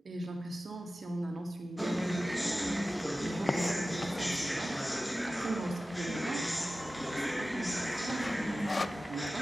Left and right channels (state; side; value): normal; both; correlation 0.95